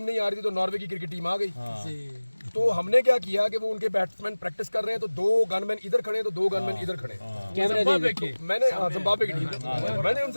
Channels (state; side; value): inverted; both; correlation -1.00